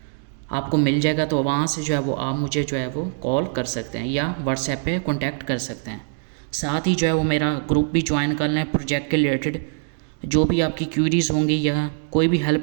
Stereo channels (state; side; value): silent; left; 64 dB below the other